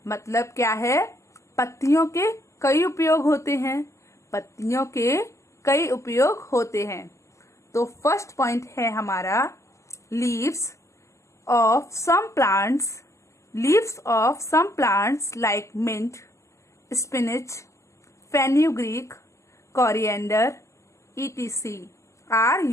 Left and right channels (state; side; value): late; right; 0.14 ms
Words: मतलब क्या है? पत्तियों के कई उपयोग होते हैं। पत्तियों के कई उपयोग होते हैं। तो फर्स्ट पॉइंट है हमारा leaves of some plants. Leaves of some plants like mint, spinach, fenugreek, coriander, etc. are